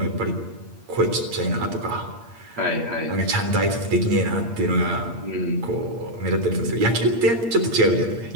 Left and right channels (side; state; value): left; late; 8.7 ms